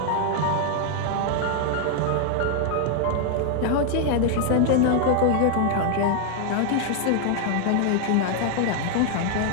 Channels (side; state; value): both; different; correlation 0.00